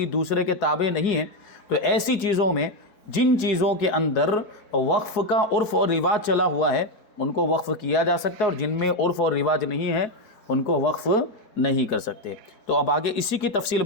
دوسرے کے تابع نہیں ہیں، تو ایسی چیزوں میں جن چیزوں کے اندر وقف کا عرف اور رواج چلا ہوا ہے ان کو وقف کیا جا سکتا ہے، اور جن میں عرف اور رواج نہیں ہے ان کو وقف نہیں کر سکتے۔ تو اب آگے اسی کی تفصیل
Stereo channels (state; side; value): late; right; 4.7 ms